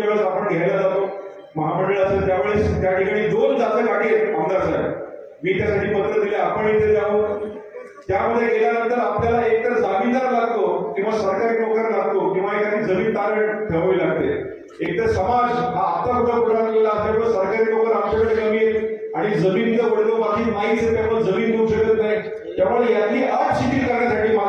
आपण घ्यायला जातो महामंडळ असेल त्यावेळेस त्या ठिकाणी 2 जातं गाठी आहेत आमदार साहेब. मी त्यासाठी पत्र दिले आपण इथे जावं. त्यामध्ये गेल्यानंतर आपल्याला एकतर जामीनदार लागतो किंवा सरकारी नोकर लागतो किंवा एखादी जमीन तारण ठेवावी लागते. एकतर समाज हा आता कुठं पुढारलेला असल्यामुळे सरकारी नोकर आमच्याकडे कमी आहेत आणि जमिनीचा वडलो बाकी नाहीच आहे त्यामुळे जमीन देऊ शकत नाही. त्यामुळे यातली अट शिथिल करण्यासाठी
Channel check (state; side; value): identical; both; correlation 1.00